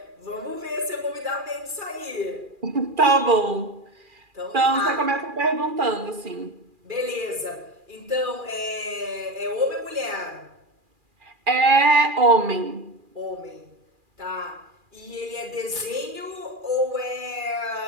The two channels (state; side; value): late; left; 2.4 ms